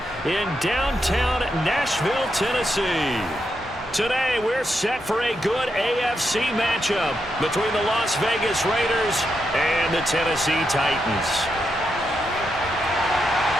in downtown Nashville, Tennessee. Today, we're set for a good AFC matchup between the Las Vegas Raiders and the Tennessee Titans.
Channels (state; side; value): normal; both; correlation 0.83